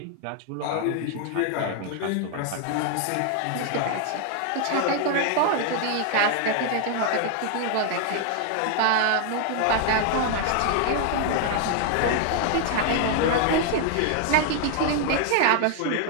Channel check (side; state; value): both; different; correlation 0.00